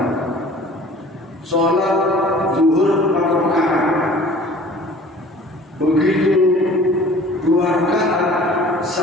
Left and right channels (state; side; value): normal; both; correlation 0.48